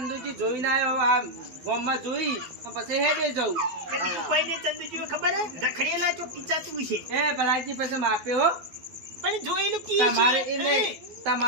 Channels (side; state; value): left; late; 12 ms